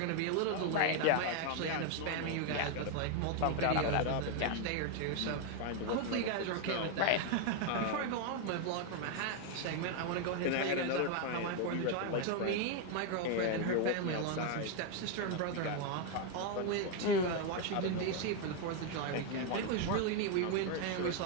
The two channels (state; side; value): different; both; correlation 0.01